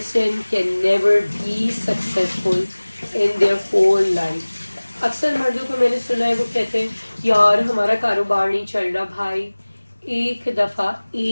can never be successful in their whole life. اکثر مردوں کو میں نے سنا ہے وہ کہتے ہیں یار ہمارا کاروبار نہیں چل رہا. بھائی ایک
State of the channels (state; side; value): inverted; both; correlation -1.00